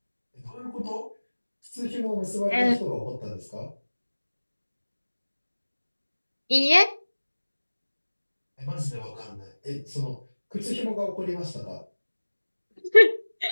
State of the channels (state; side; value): inverted; both; correlation -1.00